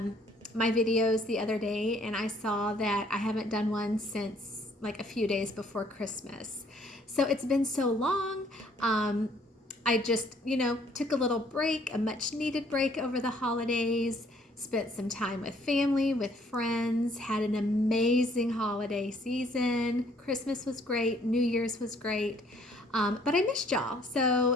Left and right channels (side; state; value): both; normal; correlation 0.62